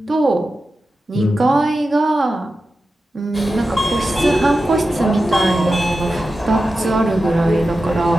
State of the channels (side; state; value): both; normal; correlation 0.92